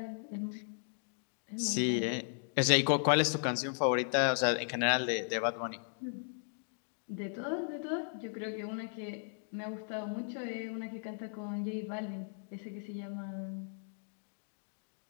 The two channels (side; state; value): right; silent; digital silence